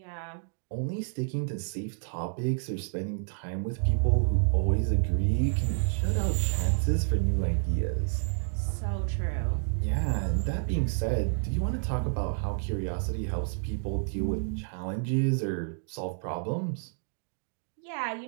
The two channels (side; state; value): left; silent; digital silence